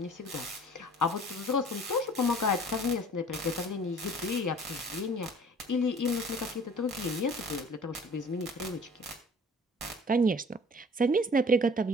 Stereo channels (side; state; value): both; normal; correlation 0.49